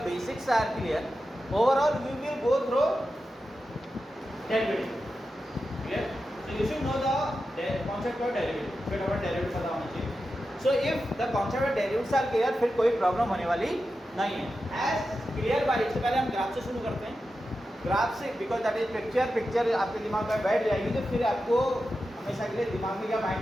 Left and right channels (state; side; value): normal; both; correlation 0.91